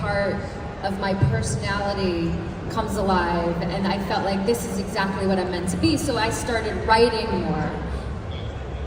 of my personality comes alive, and I felt like this is exactly what I'm meant to be. So I started writing more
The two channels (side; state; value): both; identical; correlation 1.00